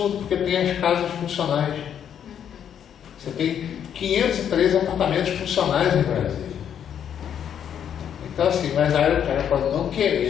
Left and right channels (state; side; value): quieter; right; 8.9 dB